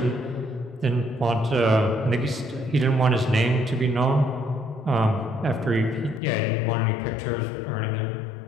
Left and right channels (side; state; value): right; drops out; at 6.2 s